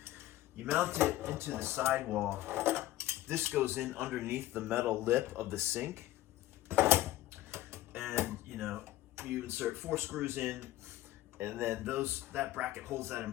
you mount it into the sidewall. This goes in underneath the metal lip of the sink. And you insert 4 screws in, and then that bracket holds that in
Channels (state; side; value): quieter; right; 15.4 dB